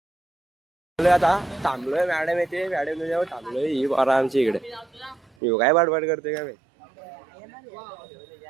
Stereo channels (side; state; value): left; drops out; at 5.3 s